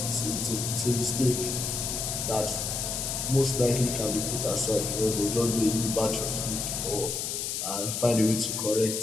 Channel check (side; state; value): left; noise; hiss, 2 dB below the sound